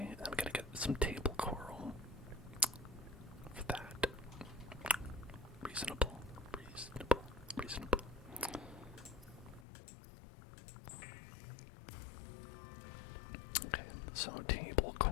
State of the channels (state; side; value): drops out; right; at 9.7 s